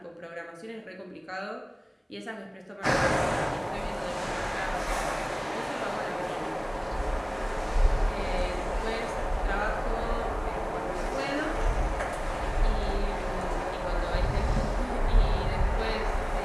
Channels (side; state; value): both; identical; correlation 1.00